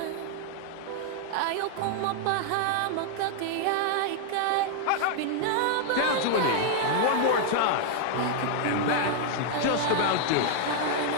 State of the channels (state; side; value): different; both; correlation 0.00